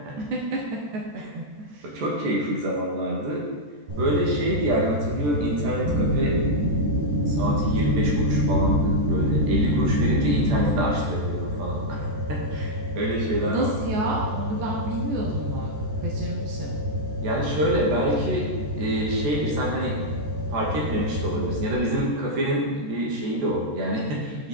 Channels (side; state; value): left; late; 14 ms